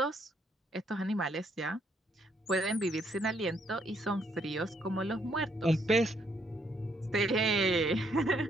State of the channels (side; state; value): both; normal; correlation 0.71